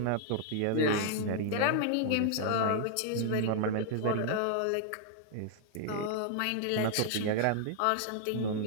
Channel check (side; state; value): both; different; correlation 0.00